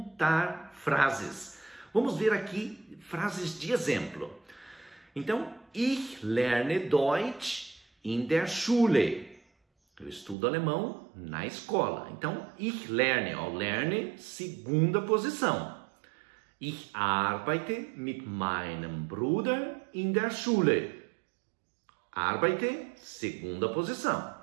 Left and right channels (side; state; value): left; drops out; at 10.4 s